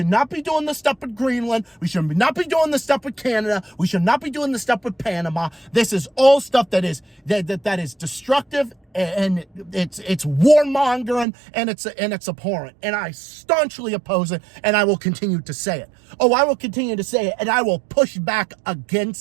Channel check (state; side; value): drops out; left; at 11.2 s